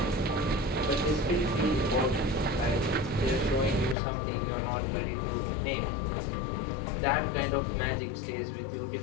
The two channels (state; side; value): drops out; right; at 4.0 s